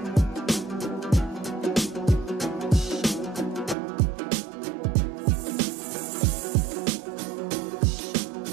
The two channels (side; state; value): left; drops out; at 3.8 s